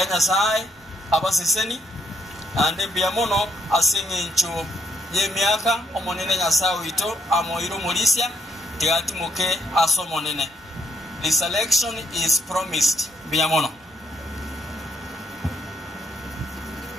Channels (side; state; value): both; normal; correlation 0.73